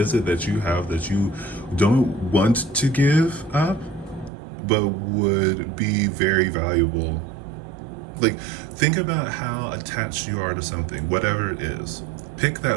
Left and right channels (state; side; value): drops out; left; at 4.3 s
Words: that you have that you don't want to give up, but would be very valuable? Like, think about how attached you are to something, whatever it is. Pick